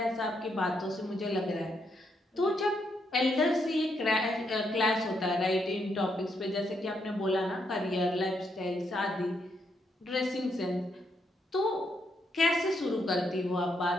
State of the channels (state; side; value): normal; both; correlation 0.78